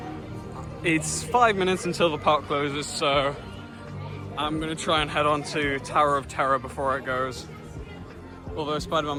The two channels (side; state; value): both; identical; correlation 1.00